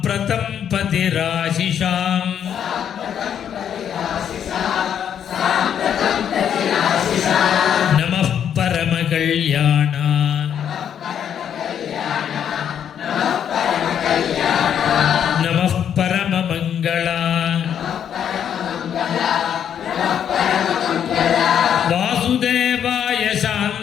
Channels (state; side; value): quieter; right; 8.9 dB